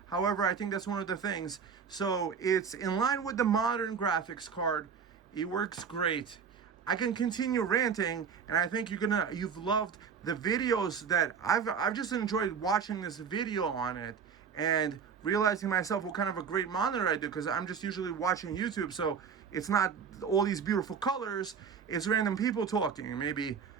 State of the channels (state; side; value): quieter; left; 6.6 dB